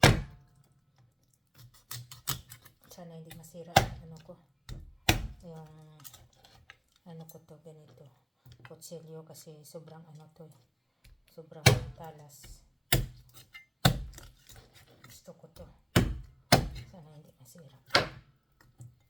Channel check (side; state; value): both; identical; correlation 1.00